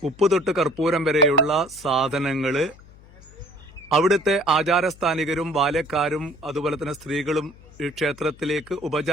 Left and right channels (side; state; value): left; noise; hum, 23 dB below the sound